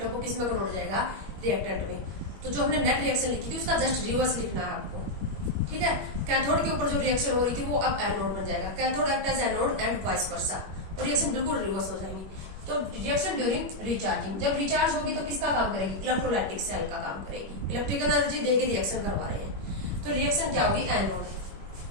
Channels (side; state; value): left; late; 21 ms